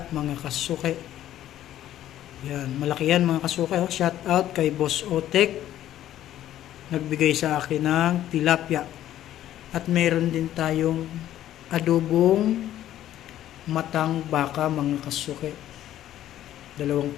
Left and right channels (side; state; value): right; quieter; 12.5 dB